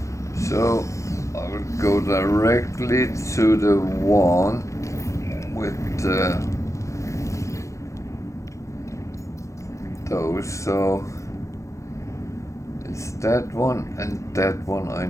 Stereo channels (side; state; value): right; late; 0.15 ms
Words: So I will go directly to the one with those, so it's that one and that one I